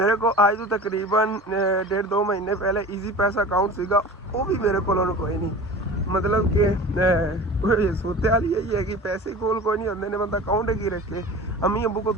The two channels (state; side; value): normal; both; correlation 0.37